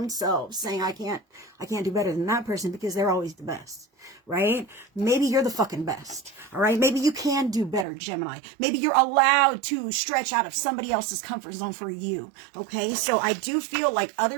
selves, saying, I can't do better than that person because they're always the best, right? Maybe you're the fucking best, all right? Maybe you can do better, Gemini. Maybe you're allowed to stretch out of somebody else's comfort zone for you, okay? So I do feel like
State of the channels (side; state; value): left; drops out; at 7.9 s